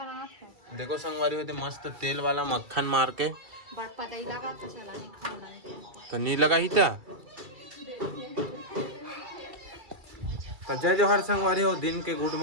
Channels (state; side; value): late; left; 2.3 ms